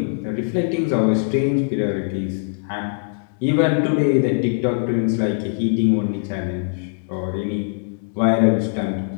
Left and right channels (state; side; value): silent; right; digital silence